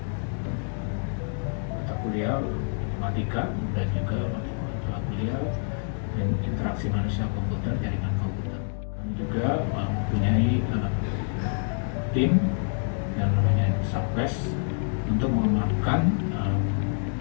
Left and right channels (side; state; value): right; silent; 60 dB below the other